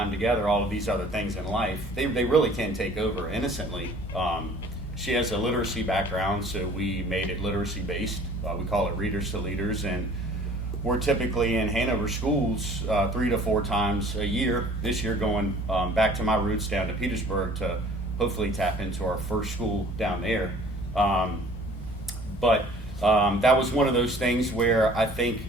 together, all of these other things in life, they really can take over innocently. She has a literacy background, so we made it literacy based. We call it Readers to Leaders, and we're typically in Hanover schools 3 to 4 times a year. This year going back to my roots down to Petersburg to hopefully tap into our first school down there. But that was one of those things where I think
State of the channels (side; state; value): both; normal; correlation 0.51